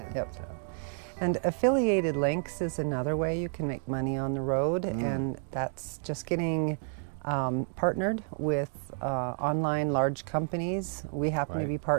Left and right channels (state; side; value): silent; left; 58 dB below the other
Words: Yep. So, And affiliated links is another way you can make money on the road, and that's just getting partnered with online large companies. We happen to Right. be